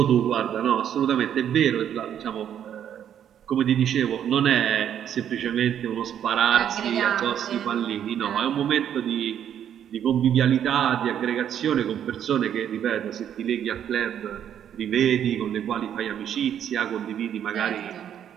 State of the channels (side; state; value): left; quieter; 9.6 dB